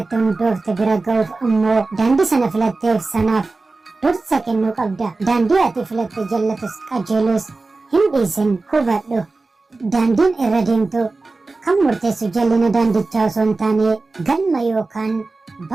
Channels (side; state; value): left; quieter; 3.6 dB